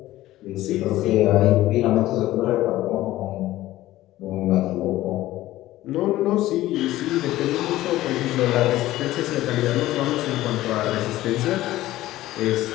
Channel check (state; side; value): quieter; right; 15.7 dB